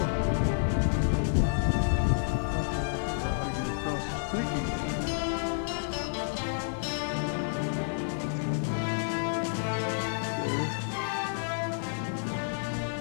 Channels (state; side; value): silent; right; digital silence